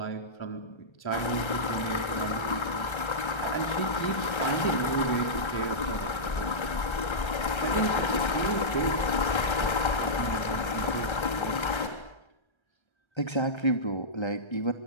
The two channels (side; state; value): right; late; 1.3 ms